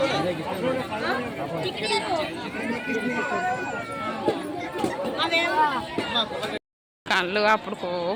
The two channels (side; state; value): both; identical; correlation 1.00